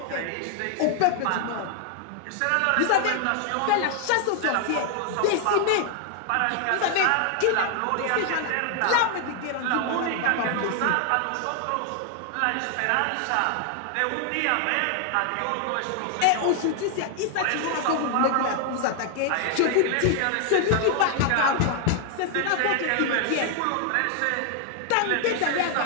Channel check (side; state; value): both; different; correlation 0.00